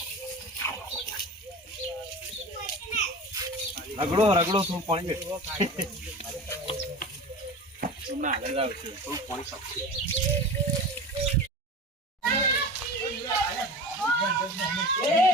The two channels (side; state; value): both; normal; correlation 0.33